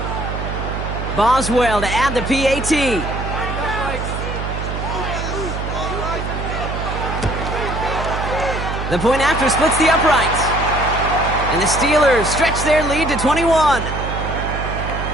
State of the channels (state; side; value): noise; right; hum, 5 dB below the sound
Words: Boswell to add the PAT. The point after splits the uprights. And the Steelers stretch their lead to 21.